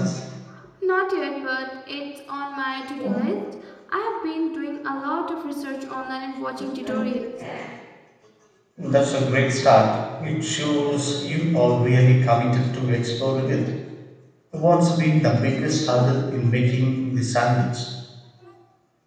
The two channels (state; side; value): identical; both; correlation 1.00